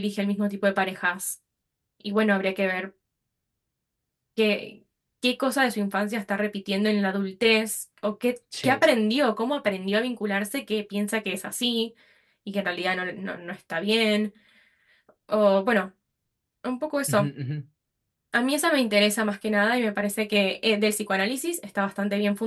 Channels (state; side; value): identical; both; correlation 1.00